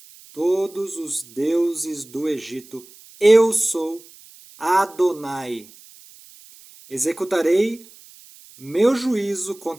todos os deuses do Egito. Eu sou Adonai. Executarei meu juízo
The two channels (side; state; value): right; noise; hiss, 23 dB below the sound